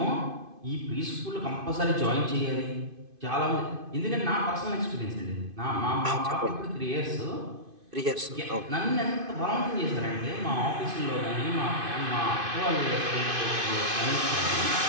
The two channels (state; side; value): late; left; 2.5 ms